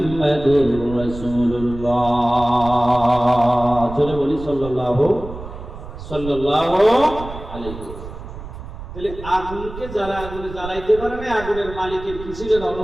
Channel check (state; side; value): noise; right; rumble, 12 dB below the sound